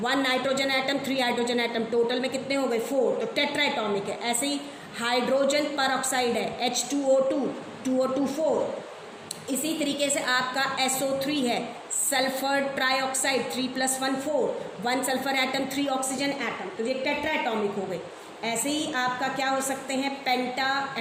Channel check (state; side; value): identical; both; correlation 1.00